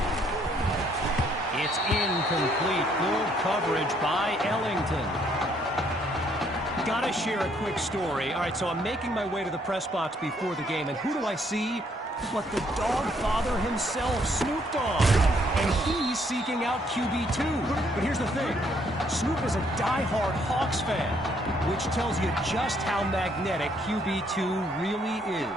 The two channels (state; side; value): normal; both; correlation 0.68